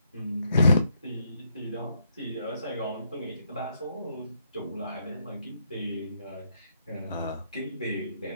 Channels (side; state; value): both; inverted; correlation -0.74